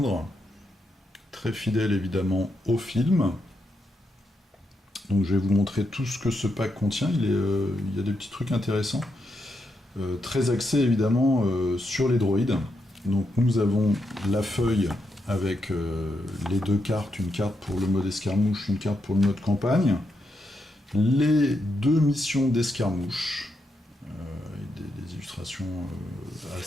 très fidèle évidemment au film. Donc je vais vous montrer tout ce que ce pack contient, il y a des petits trucs intéressants. Très axé évidemment sur les droïdes. Donc nous avons la feuille avec les deux cartes, une carte pour le mode escarmouche, une carte pour le mode campagne. Les deux missions d'escarmouche, des illustrations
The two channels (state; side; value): normal; both; correlation 0.82